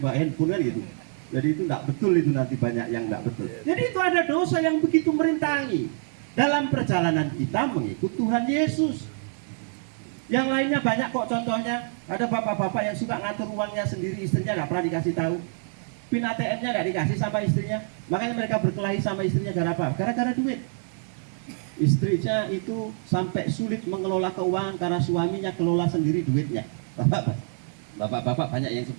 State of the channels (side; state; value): left; silent; 58 dB below the other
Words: handphone kan gitu. Jadi itu tidak betul, itu nanti banyak yang tidak betul. Jadi itu ada dosa yang begitu merintangi dalam perjalanan kita mengikut Tuhan Yesus. Yang lainnya banyak kok contohnya. Ada bapak-bapak yang suka ngatur uangnya sendiri, istrinya nggak pernah dikasih tahu. PIN ATM-nya nggak dikasih sama istrinya. Makanya mereka berkelahi sama istrinya gara apa? Gara-gara duit. Istrinya itu sampai sulit mengelola keuangan karena suaminya kelola sendiri duitnya. Bapak-bapak banyak yang